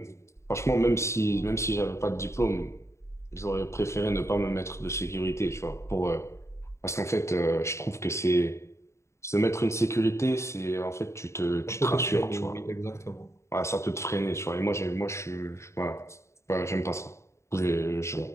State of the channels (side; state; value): right; late; 0.14 ms